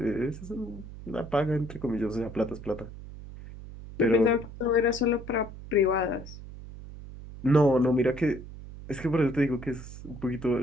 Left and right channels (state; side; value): noise; right; hum, 13 dB below the sound